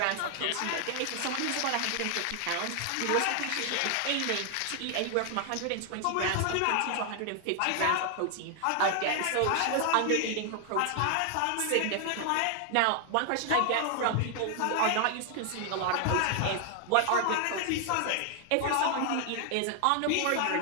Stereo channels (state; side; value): different; both; correlation 0.00